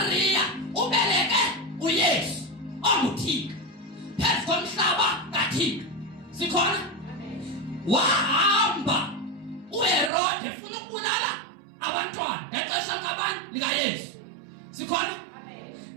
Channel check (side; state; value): left; drops out; at 10.1 s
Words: ubeleke uYesu onguThixo phezu komhlaba kaThixo. Sikhona? Wahamba uHerode ufuna ukubulala abantwana ngexesha kabani likaYesu. Sikhona?